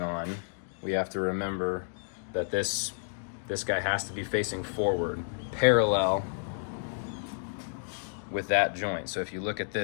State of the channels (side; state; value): right; silent; digital silence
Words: on, we have to remember that this guy has to be facing forward, parallel with that joint. So if you look at